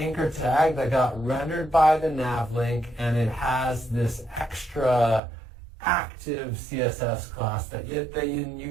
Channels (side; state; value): left; drops out; at 5.2 s